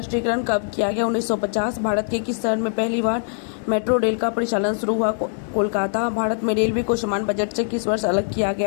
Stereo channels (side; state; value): right; silent; 62 dB below the other